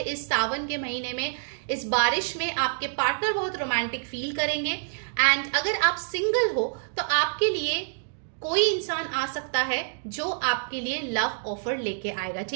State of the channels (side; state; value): left; silent; digital silence